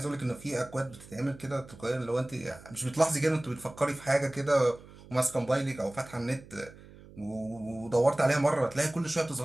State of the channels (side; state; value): right; noise; hum, 20 dB below the sound